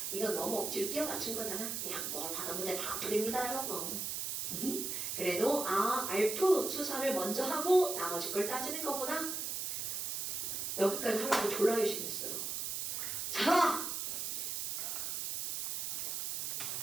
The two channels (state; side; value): noise; right; hiss, 2 dB below the sound